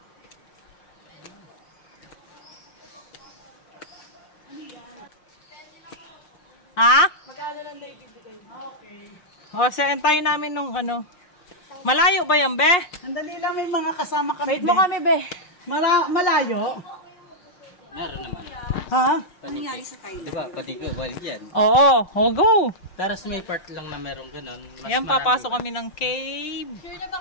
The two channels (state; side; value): late; right; 6.6 ms